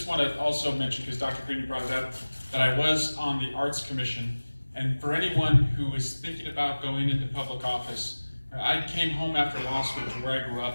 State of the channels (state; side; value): inverted; both; correlation -1.00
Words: want to also mention, because Dr. Green, you brought it up, that I was on the Arts Commission. And for anyone who is thinking about going into public office, I came home after law school to where I grew